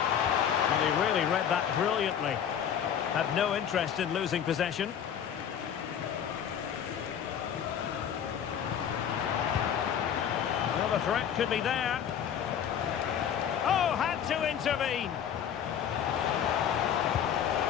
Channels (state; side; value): quieter; right; 8.8 dB